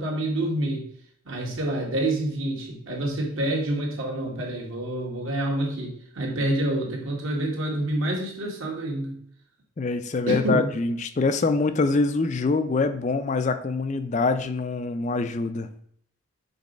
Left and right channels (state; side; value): normal; both; correlation 0.48